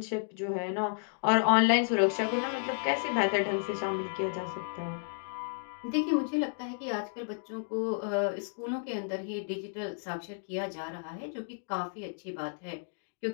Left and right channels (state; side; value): silent; right; digital silence